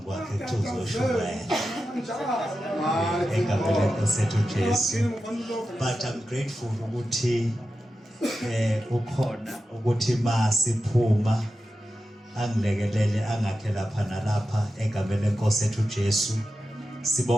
kwakhe kuthuzoshubaya. Egameni lenkosi yethu uJesu. But I'm grateful ukuthi ukhona ukuthi masiphuma angilekelele angakhe lapha nalapha egameni lenkosi yethu uJesu.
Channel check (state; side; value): normal; both; correlation 0.91